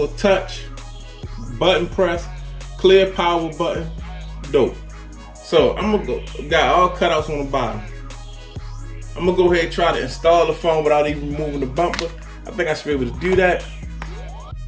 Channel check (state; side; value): identical; both; correlation 1.00